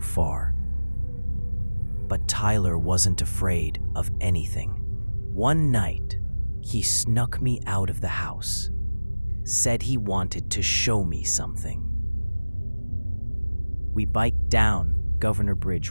far. But Tyler wasn't afraid of anything. One night, he snuck me out of the house, said he wanted to show me something. We biked down Governor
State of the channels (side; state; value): both; inverted; correlation -1.00